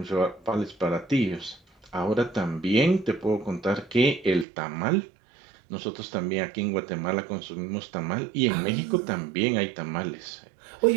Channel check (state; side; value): drops out; left; at 4.5 s